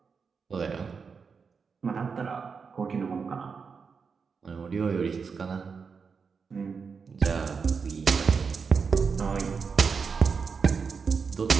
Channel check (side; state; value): left; quieter; 5.5 dB